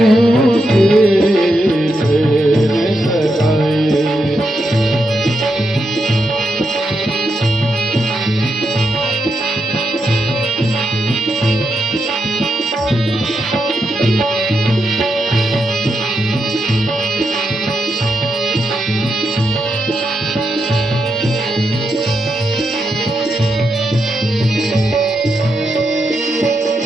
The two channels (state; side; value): normal; both; correlation 0.84